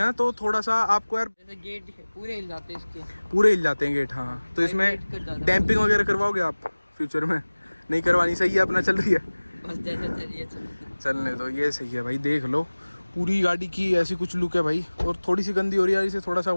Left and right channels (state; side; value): inverted; both; correlation -1.00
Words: तो थोड़ा सा आपको यार जैसे गेट पूरे हिल जाते हैं इसके, पूरे हिल जाते हैं गेट। हाँ, तो इसमें डैम्पिंग वगैरह करवाओगे आप फ्यूचर में? नहीं करवानी, सही है अपना चल रही है, बस जैसे चलिए चलने दो, ये सही है भाई। देख लो पूरी गाड़ी की ऐसी कुछ लुक है भाई। और थोड़ी सी गंदी हो रही है, इसे थोड़ा सा